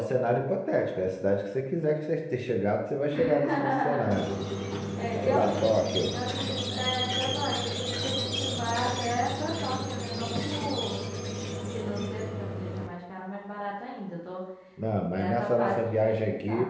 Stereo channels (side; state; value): both; identical; correlation 1.00